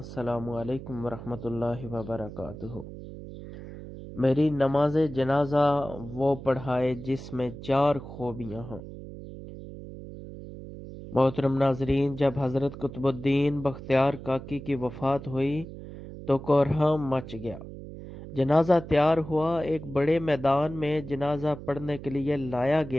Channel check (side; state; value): right; noise; hum, 12 dB below the sound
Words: علیکم ورحمۃ اللہ وبرکاتہ۔ میری نماز جنازہ وہ پڑھائے جس میں 4 خوبیاں ہوں۔ محترم ناظرین، جب حضرت قطب الدین بختیار کاکی کی وفات ہوئی تو کوہرام مچ گیا۔ جنازہ تیار ہوا، ایک بڑے میدان میں جنازہ پڑھنے کے لیے لایا